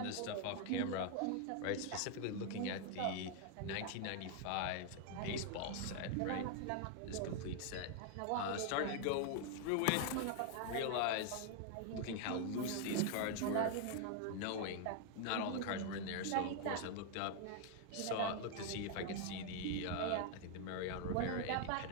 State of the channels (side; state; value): both; different; correlation 0.00